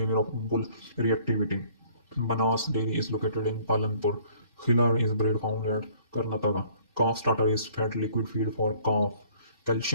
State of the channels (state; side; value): inverted; both; correlation -0.57